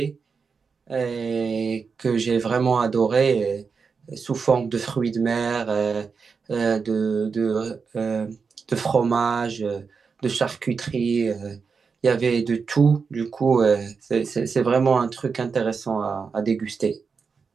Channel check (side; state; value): left; quieter; 5.3 dB